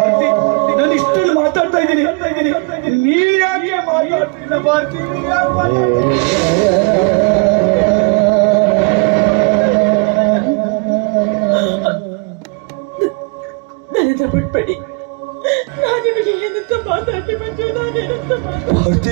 ನಾನು ಇಷ್ಟನ್ನು ಮಾತಾಡ್ತಾ ಇದ್ದೀನಿ, ನೀನ್ ಯಾಕೆ ಮಾತಾಡ್ತಿಲ್ಲ ಭಾರತಿ? ನನ್ನನ್ನು ಬಿಟ್ಬಿಡಿ, ನಾನಿವರಿಗೆ ಏನಂತ ಮಾತಾಡಿ ಬಂದು ನಾನೇನಂತ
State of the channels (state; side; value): quieter; left; 33.9 dB